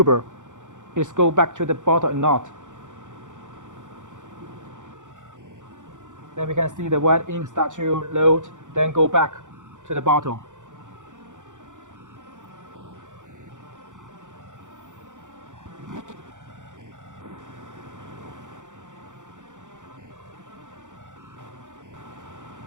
is go back to the bottle or not. Then we can see the white ink start to load, then go back to the bottle.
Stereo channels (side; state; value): left; late; 0.86 ms